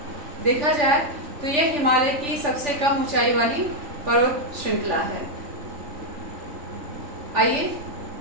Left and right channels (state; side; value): late; left; 3.4 ms